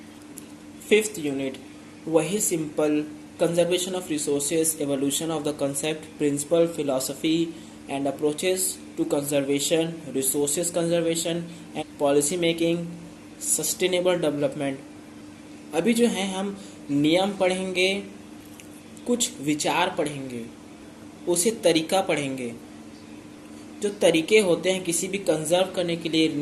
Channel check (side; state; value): both; identical; correlation 1.00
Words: 5th यूनिट वही simple, conservation of resources, evolution of the concept, principle, philosophy and approaches to conservation, resources conservation and policy making, sustainable development। अभी जो है हम नियम पढ़ेंगे, कुछ विचार पढ़ेंगे, उसे तरीका पढ़ेंगे। जो तरीके होते हैं किसी भी कंजर्व करने के लिए